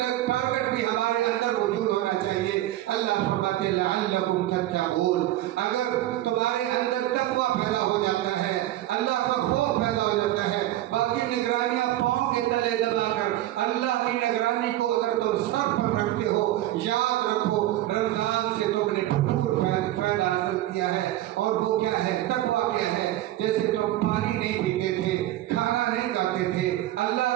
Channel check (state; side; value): quieter; left; 14.6 dB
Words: بھی ہمارے اندر وجود ہونا چاہیے۔ اللہ فرماتے ہیں لعلکم تتقون، اگر تمہارے اندر تقویٰ پیدا ہو جاتا ہے، اللہ کا خوف پیدا ہو جاتا ہے، باقی نگرانیاں پاؤں کے تلے دبا کر اللہ کی نگرانی کو اگر تم سر پر رکھتے ہو، یاد رکھو رمضان سے تم نے بھرپور فائدہ حاصل کیا ہے۔ اور وہ کیا ہے؟ تقویٰ کیا ہے؟ جیسے تم پانی نہیں پیتے تھے، کھانا نہیں کھاتے تھے، اللہ